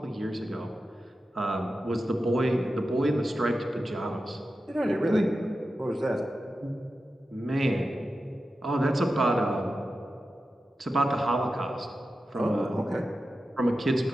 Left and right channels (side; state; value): both; normal; correlation 0.92